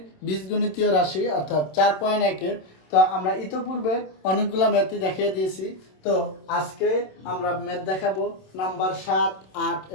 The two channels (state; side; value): late; right; 27 ms